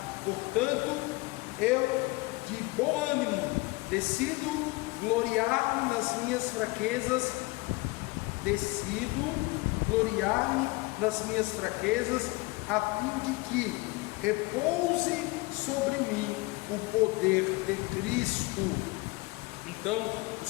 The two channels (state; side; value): quieter; right; 24.5 dB